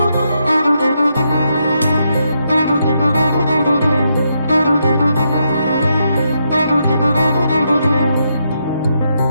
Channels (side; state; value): both; inverted; correlation -0.79